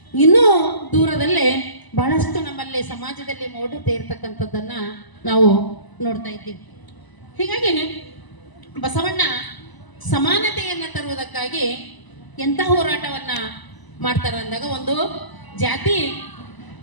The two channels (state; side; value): late; right; 1.0 ms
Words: ಇನ್ನೂ ದೂರದಲ್ಲಿ ಬಹಳಷ್ಟು ನಮ್ಮಲ್ಲಿ ಸಮಾಜದಲ್ಲಿ ಮೌಢ್ಯತೆ ಇರ್ತಕ್ಕಂಥದ್ದನ್ನ ನಾವು ನೋಡ್ತಾ ಇದ್ದೀವಿ. ಹೀಗಾಗಿ ಬಸವಣ್ಣ ಸಮಾನತೆಯನ್ನ ತರುವುದಕ್ಕಾಗಿ ಎಂಥ ಹೋರಾಟವನ್ನ ಮಾಡ್ತಾರೆ ಅಂದಾಗ, ಒಂದು ಜಾತಿ